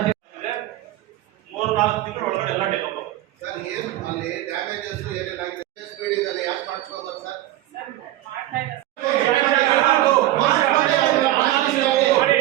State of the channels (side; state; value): left; quieter; 15.0 dB